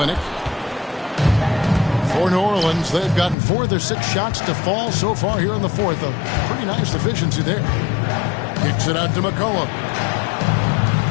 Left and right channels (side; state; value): right; drops out; at 3.4 s